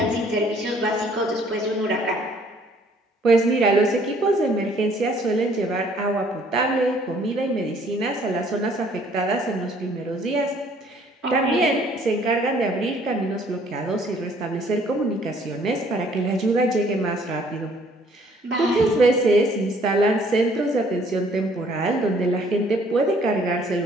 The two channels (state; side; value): normal; both; correlation 0.60